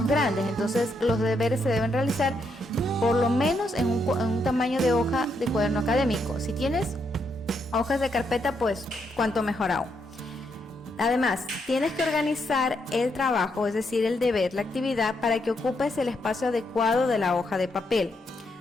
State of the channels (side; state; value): both; normal; correlation 0.78